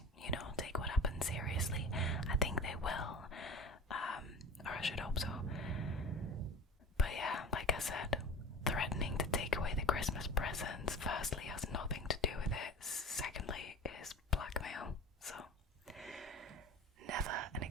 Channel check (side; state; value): both; normal; correlation 0.35